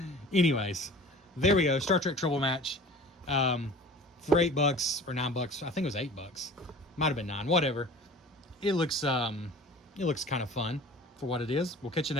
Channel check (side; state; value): both; normal; correlation 0.42